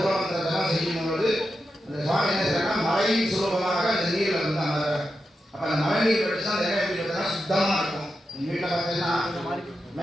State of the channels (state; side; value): normal; both; correlation 0.89